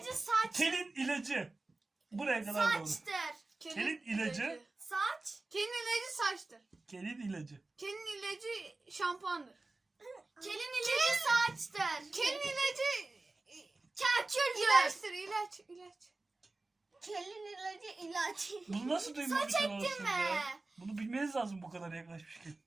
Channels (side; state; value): left; quieter; 3.2 dB